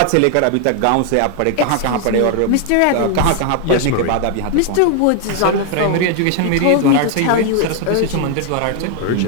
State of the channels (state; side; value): different; both; correlation 0.00